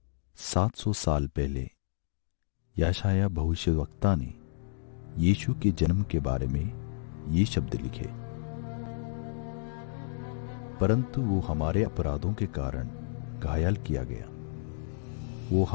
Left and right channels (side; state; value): right; silent; digital silence